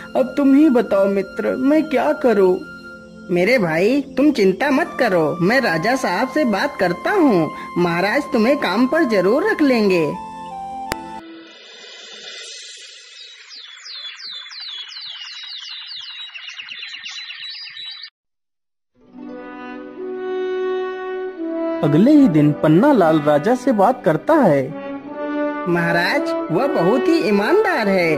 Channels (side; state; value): both; identical; correlation 1.00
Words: अब तुम ही बताओ मित्र, मैं क्या करूं? मेरे भाई, तुम चिंता मत करो, मैं राजा साहब से बात करता हूँ। महाराज तुम्हें काम पर जरूर रख लेंगे। अगले ही दिन पन्नालाल राजा से बात करता है। महाराज, वह बहुत ही ईमानदार है,